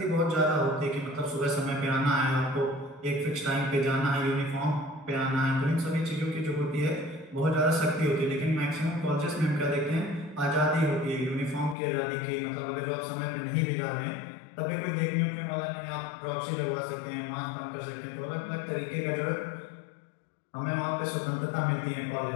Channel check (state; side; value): drops out; right; at 11.8 s